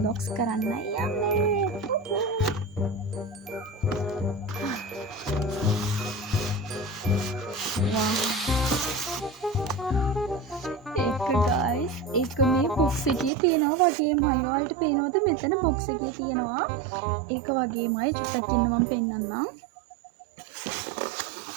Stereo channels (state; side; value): drops out; left; at 13.3 s